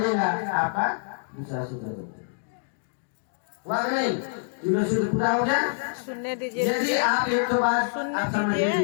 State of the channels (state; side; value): silent; right; digital silence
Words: आपका दूसरा सूत्र हुआ नहीं, तीनों सूत्र पूरा हो गया। सुनने दीजिए, यदि आप एक तो बात आप समझ